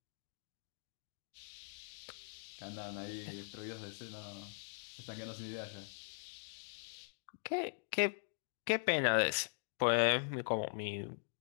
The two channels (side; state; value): right; silent; digital silence